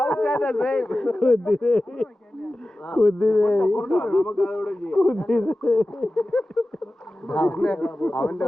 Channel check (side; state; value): both; normal; correlation 0.95